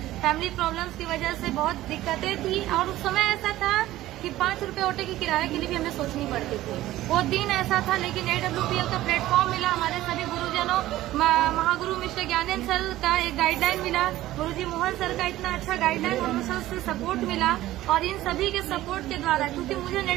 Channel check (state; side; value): quieter; left; 15.4 dB